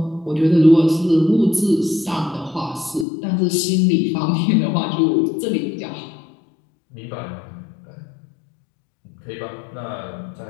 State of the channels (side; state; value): right; drops out; at 3.1 s